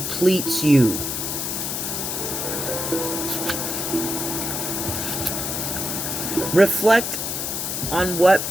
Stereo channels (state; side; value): noise; left; hiss, 2 dB below the sound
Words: you? Reflect on what